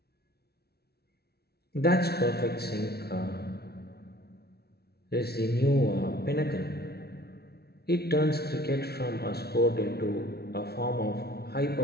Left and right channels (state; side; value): late; right; 0.46 ms